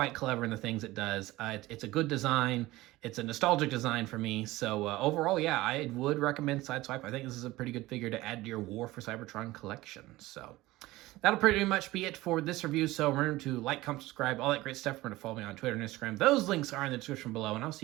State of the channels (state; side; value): quieter; left; 18.4 dB